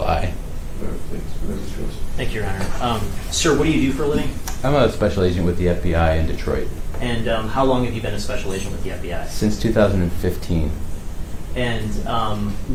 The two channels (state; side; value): identical; both; correlation 1.00